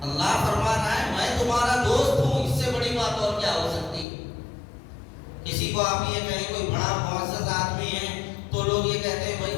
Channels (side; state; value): right; drops out; at 4.0 s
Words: اللہ فرما رہا ہے میں تمہارا دوست ہوں، اس سے بڑی بات اور کیا ہو سکتی ہے؟ کسی کو آپ یہ کہیں کوئی بڑا معزز آدمی ہے تو لوگ یہ کہتے ہیں بھائی